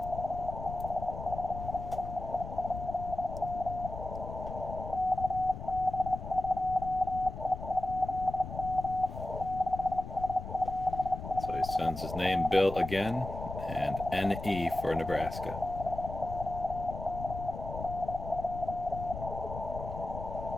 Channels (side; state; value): left; noise; rumble, 9 dB below the sound